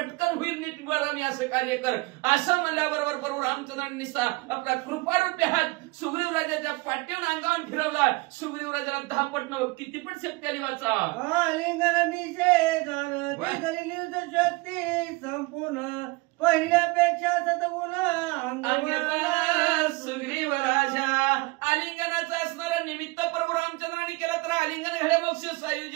होईल नीट बघा मी असं कार्य कर. असं म्हणल्याबरोबर प्रभू रामचंद्रांनी निसा आपला कृपारूपी हात सुग्रीवराजाच्या पाठीवर अंगावर फिरवला. सुग्रीवराजाला 10 पट किती पण शक्ती आली वाचा. आलिंगन निषेधन निर्द शक्ती संपूर्ण, पहिल्यापेक्षा सद्गुण सुग्रीवराजा. आलिंगनाचं असणारं निमित्त प्रभू रामचंद्रांनी केलं तर आलिंगन घड्या मोक्ष सायुज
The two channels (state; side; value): quieter; left; 24.5 dB